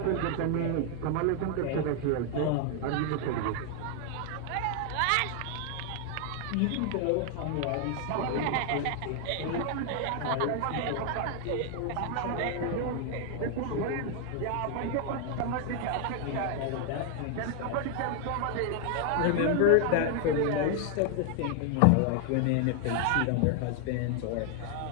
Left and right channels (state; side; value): different; both; correlation 0.00